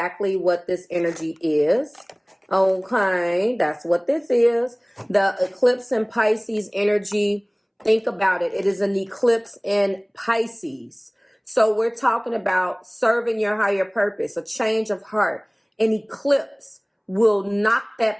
what this energy is. Okay, that's what this is. The eclipse in Pisces energy. Think about it. It is an eclipse in Pisces. So we're talking about serving your higher purpose, a change of heart. An eclipse will knock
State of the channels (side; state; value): both; identical; correlation 1.00